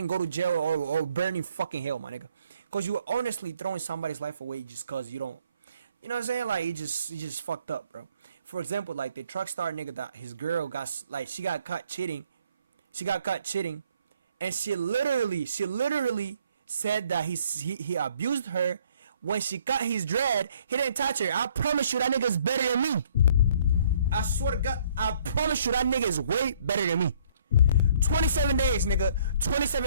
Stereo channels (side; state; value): both; inverted; correlation -0.62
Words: to jail or burn in fucking hell, my nigga. Cause you honestly throwing somebody's life away just cause you don't, you know what I'm saying? Like he just fucked up, bro. For example, like the truck star nigga that his girl got, like she got caught cheating. She got caught cheating, and she literally said that he abused her. When she cut his dread, he didn't touch her. I promise you that nigga's better than me. I swear to God, I promise you that nigga is way better than me. 27 days, nigga.